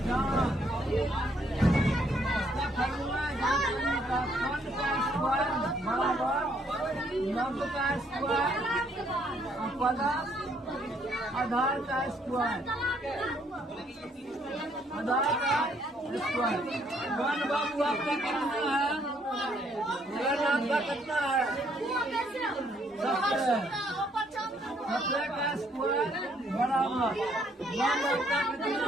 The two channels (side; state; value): both; normal; correlation 0.68